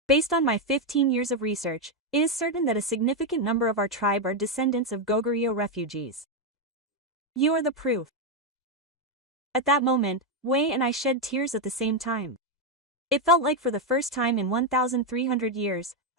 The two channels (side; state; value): both; normal; correlation 0.04